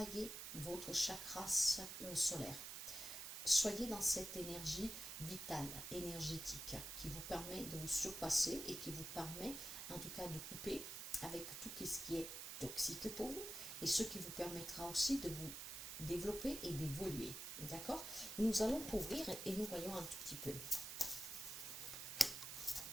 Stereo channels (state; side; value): noise; right; hiss, 7 dB below the sound